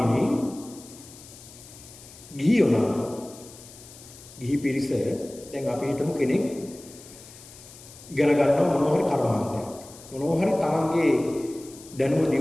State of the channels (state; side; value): noise; left; hiss, 19 dB below the sound